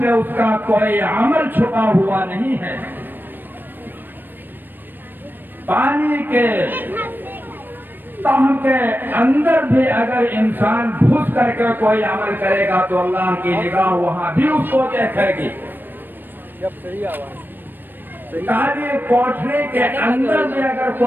اس کا کوئی عمل چھپا ہوا نہیں ہے۔ پانی کے تہ کے اندر بھی اگر انسان گھس کر کے کوئی عمل کرے گا تو اللہ کی نگاہ وہاں بھی اس کو دیکھے گی۔ کالی کوٹھری کے اندر بھی اگر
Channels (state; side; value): late; left; 0.093 ms